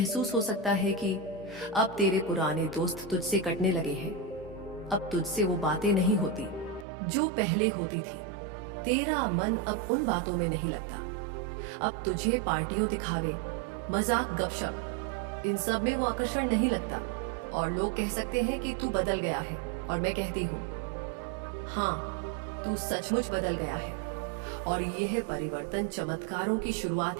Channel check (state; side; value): drops out; left; at 6.9 s